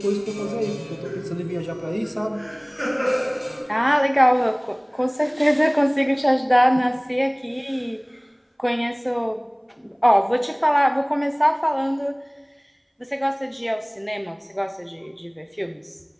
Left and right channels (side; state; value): both; identical; correlation 1.00